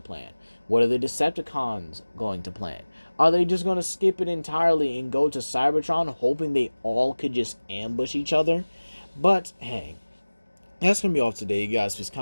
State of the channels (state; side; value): inverted; both; correlation -1.00